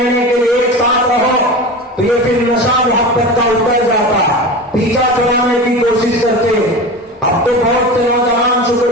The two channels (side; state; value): both; normal; correlation 0.29